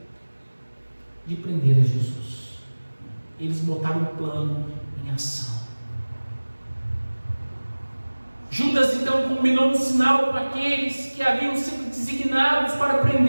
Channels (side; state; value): both; inverted; correlation -1.00